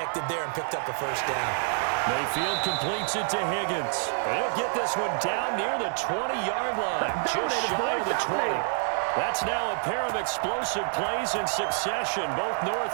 there and picked up a 1st down. Mayfield completes it to Higgins. He'll get this one down near the 20-yard line, just shy of the 20. That's now a pair of explosive plays in succession, both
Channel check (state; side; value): silent; left; 60 dB below the other